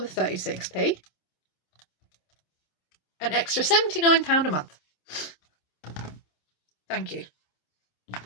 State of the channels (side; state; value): right; late; 27 ms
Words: 36p, an extra £79 a month. Thank you.